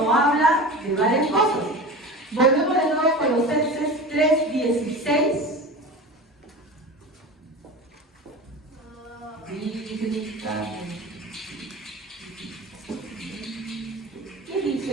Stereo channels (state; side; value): normal; both; correlation 0.32